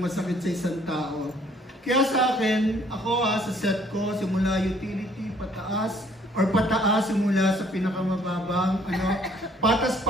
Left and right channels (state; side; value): normal; both; correlation 0.61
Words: masakit sa isang tao. Kaya sa akin, ako sa set ko, simula utility, pataas, simula sa pinakamababang,